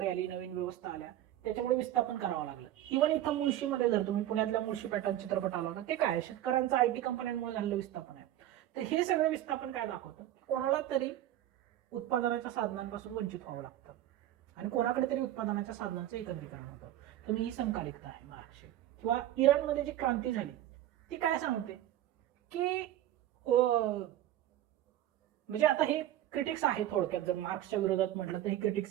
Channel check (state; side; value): quieter; left; 13.0 dB